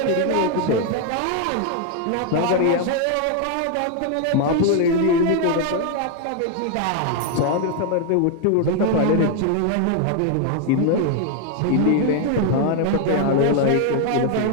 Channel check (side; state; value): both; different; correlation 0.00